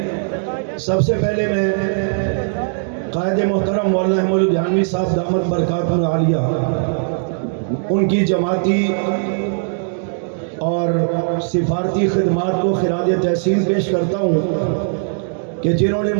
سب سے پہلے میں قائد محترم مولانا احمد الدھیانوی صاحب دامت برکاتہ عالیہ، ان کی جماعتی اور سفارتی خدمات کو خراج تحسین پیش کرتا ہوں کہ جنہوں نے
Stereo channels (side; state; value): left; silent; digital silence